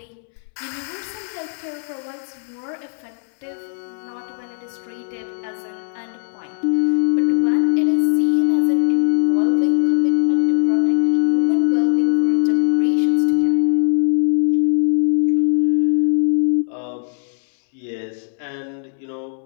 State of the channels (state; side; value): silent; right; 66 dB below the other